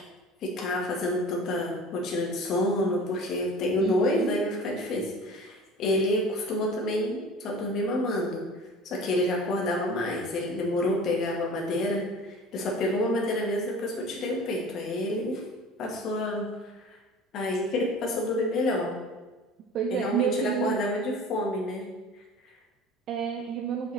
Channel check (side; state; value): both; normal; correlation 0.41